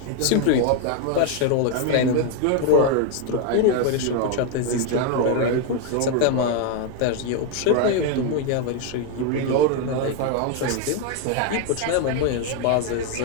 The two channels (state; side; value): different; both; correlation 0.01